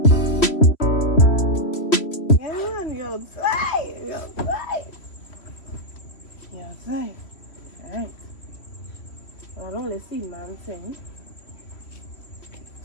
you're outside. Alright. Well, I don't only see one thing.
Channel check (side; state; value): right; late; 3.0 ms